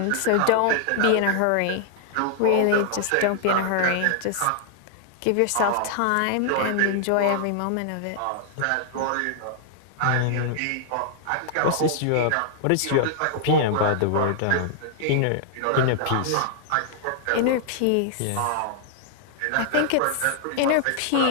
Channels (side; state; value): both; different; correlation -0.01